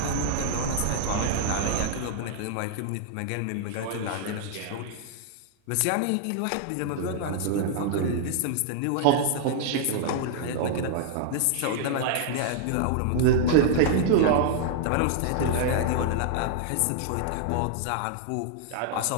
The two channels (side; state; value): both; different; correlation -0.01